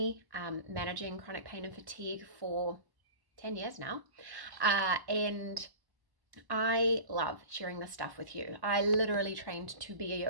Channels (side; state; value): left; late; 1.1 ms